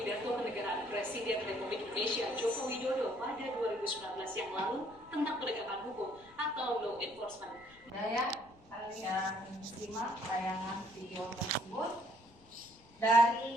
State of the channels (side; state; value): left; noise; rumble, 26 dB below the sound